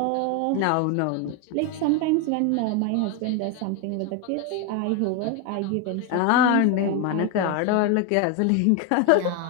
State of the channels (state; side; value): different; both; correlation 0.02